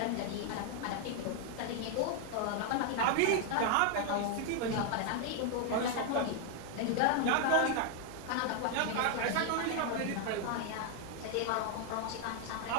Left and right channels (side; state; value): both; different; correlation 0.00